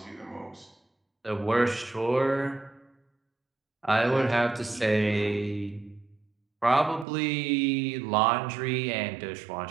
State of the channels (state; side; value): drops out; left; at 7.1 s